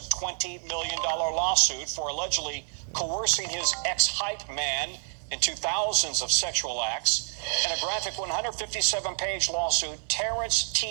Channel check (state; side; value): silent; left; digital silence